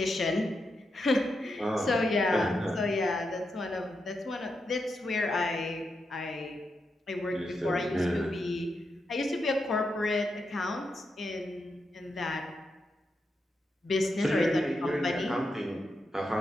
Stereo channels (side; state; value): both; normal; correlation 0.85